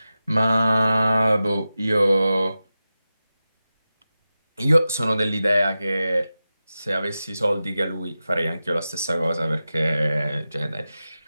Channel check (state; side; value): inverted; both; correlation -0.93